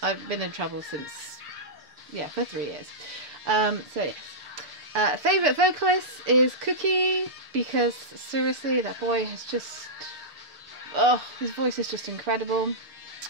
I've been in trouble since, yeah, for 3 years. So yes. Favourite vocalist is Cookie, because seriously, that boy has just, oh, his voice is just incredible,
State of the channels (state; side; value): late; left; 6.6 ms